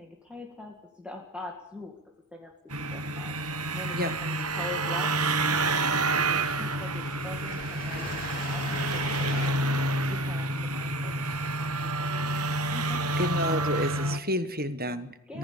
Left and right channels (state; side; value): normal; both; correlation 0.33